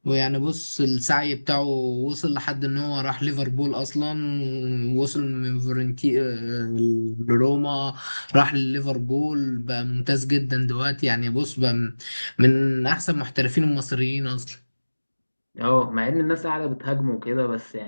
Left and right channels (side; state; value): both; inverted; correlation -1.00